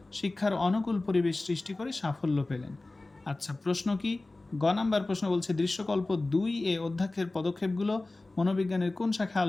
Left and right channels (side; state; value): right; quieter; 3.0 dB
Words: শিক্ষার অনুকূল পরিবেশ সৃষ্টি করে সাফল্য পেলেন। আচ্ছা, প্রশ্ন কি? গ নাম্বার প্রশ্ন বলছে দৃশ্যকল্প 2 অধ্যক্ষের পদক্ষেপগুলো মনোবিজ্ঞানের কোন শাখায়